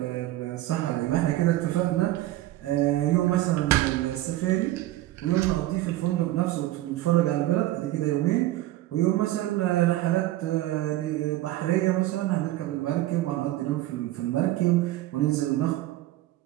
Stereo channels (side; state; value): left; quieter; 15.7 dB